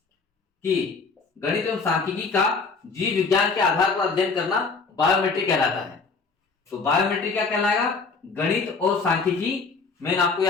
की गणित एवं सांख्यिकी का जीव विज्ञान के आधार पर अध्ययन करना बायोमेट्री कहलाता है। तो बायोमेट्री क्या कहलाएगा? गणित और सांख्यिकी। मेन आपको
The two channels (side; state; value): right; quieter; 4.5 dB